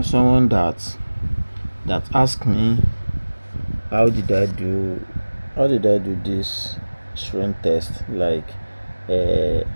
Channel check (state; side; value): inverted; both; correlation -1.00